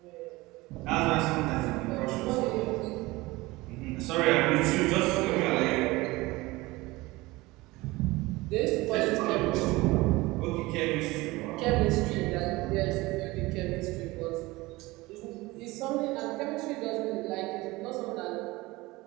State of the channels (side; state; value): left; quieter; 21.0 dB